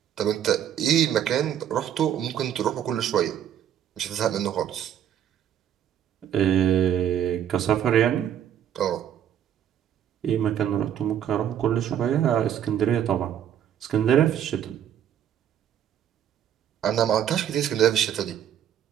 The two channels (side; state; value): left; quieter; 9.8 dB